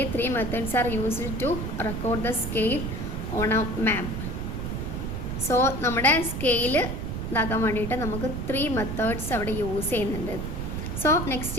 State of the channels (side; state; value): right; noise; rumble, 4 dB below the sound